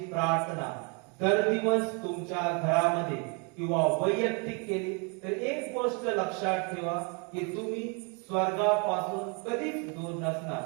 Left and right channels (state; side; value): quieter; left; 34.7 dB